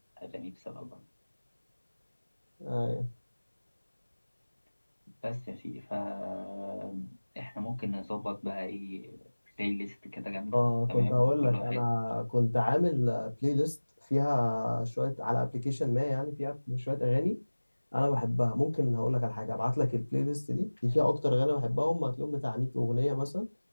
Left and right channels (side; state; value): both; inverted; correlation -1.00